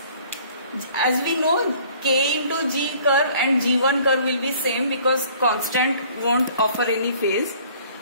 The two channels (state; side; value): inverted; both; correlation -0.54